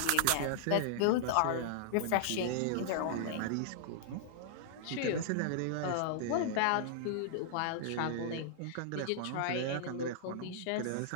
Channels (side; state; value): both; different; correlation -0.01